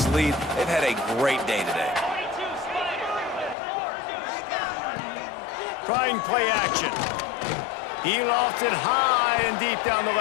lead. They've had a great day today. Trying play action. He lofts it high and deep down the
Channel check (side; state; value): right; drops out; at 3.6 s